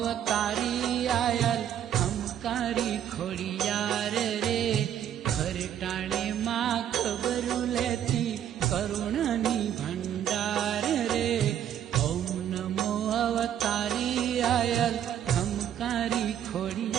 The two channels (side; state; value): left; quieter; 10.1 dB